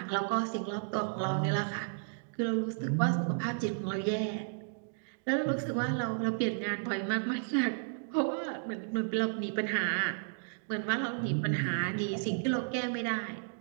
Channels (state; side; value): silent; left; digital silence